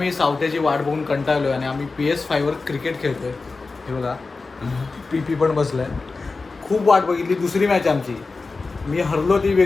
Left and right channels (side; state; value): right; quieter; 3.9 dB